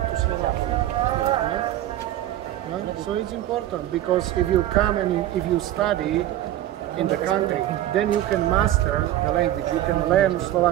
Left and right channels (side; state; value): left; quieter; 13.5 dB